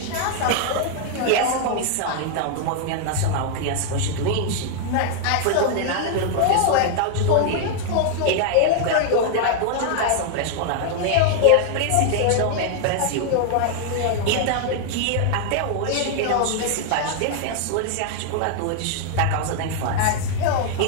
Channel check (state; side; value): different; both; correlation 0.00